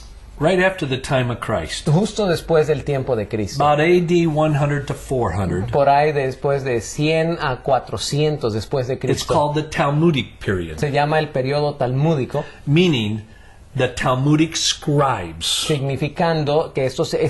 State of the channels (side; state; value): both; identical; correlation 1.00